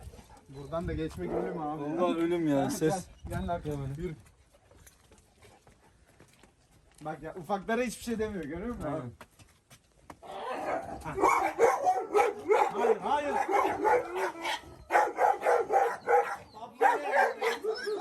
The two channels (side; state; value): both; identical; correlation 1.00